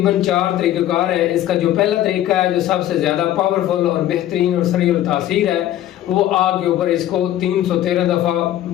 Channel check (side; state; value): right; quieter; 12.9 dB